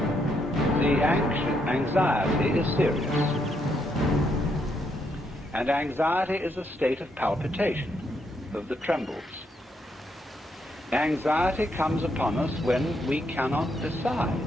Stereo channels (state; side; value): normal; both; correlation 0.76